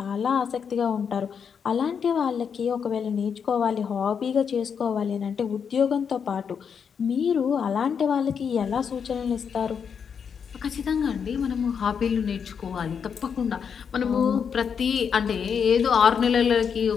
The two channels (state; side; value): quieter; right; 6.9 dB